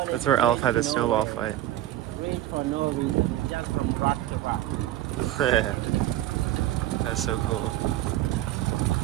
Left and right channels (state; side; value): quieter; left; 13.8 dB